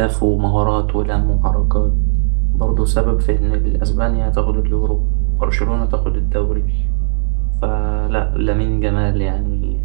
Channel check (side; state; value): left; silent; digital silence